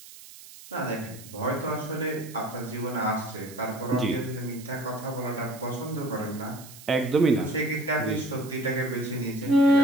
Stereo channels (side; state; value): right; noise; hiss, 17 dB below the sound